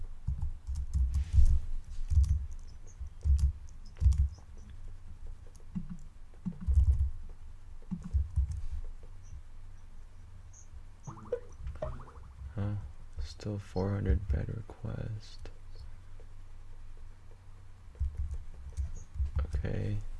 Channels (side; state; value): both; identical; correlation 1.00